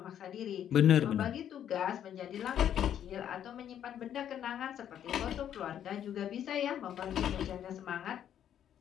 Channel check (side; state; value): right; quieter; 10.0 dB